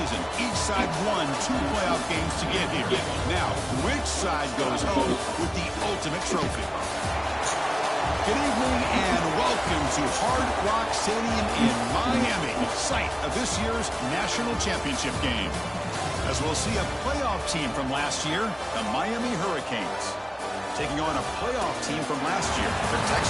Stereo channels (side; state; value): both; identical; correlation 1.00